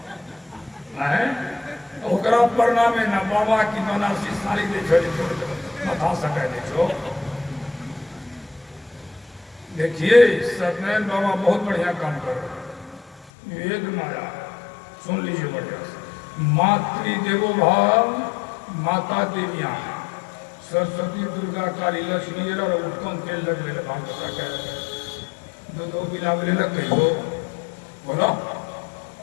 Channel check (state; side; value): drops out; right; at 13.3 s